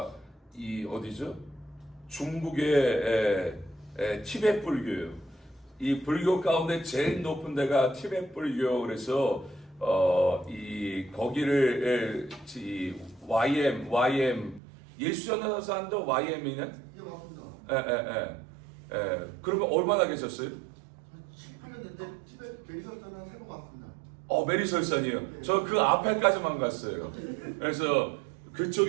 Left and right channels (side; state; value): left; drops out; at 14.6 s